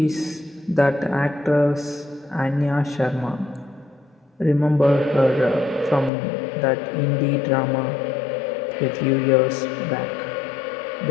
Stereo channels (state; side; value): drops out; right; at 6.1 s